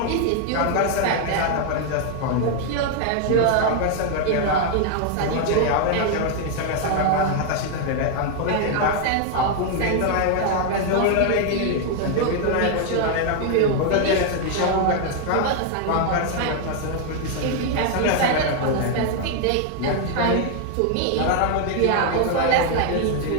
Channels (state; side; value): different; both; correlation 0.00